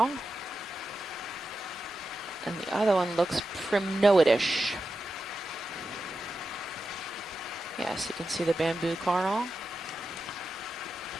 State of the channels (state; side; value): normal; both; correlation 0.90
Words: And the other one looks primnoidish. Yes, you can see the bamboo coral.